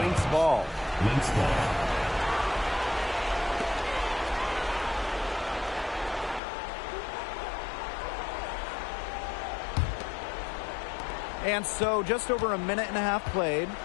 ball. Lynx ball. And so just over a minute and a half played.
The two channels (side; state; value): right; drops out; at 6.4 s